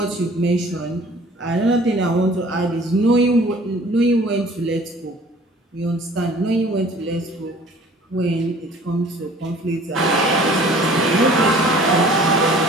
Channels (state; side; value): normal; both; correlation 0.50